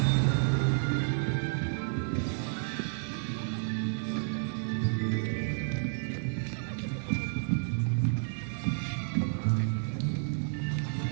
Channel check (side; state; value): left; silent; 57 dB below the other